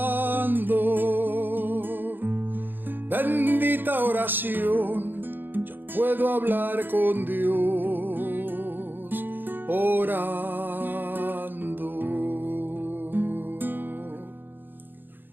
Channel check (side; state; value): left; late; 0.094 ms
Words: Bendita oración, yo puedo hablar con Dios orando.